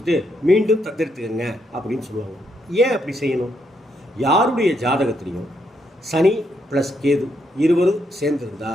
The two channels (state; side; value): normal; both; correlation 0.77